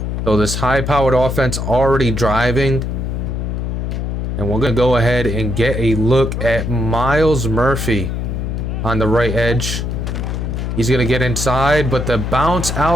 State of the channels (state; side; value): noise; left; hum, 2 dB below the sound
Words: So this high-powered offense already driving. And we're going to go ahead and get a look at Miles Murphy on the right edge. He's going to get inside, but the bounce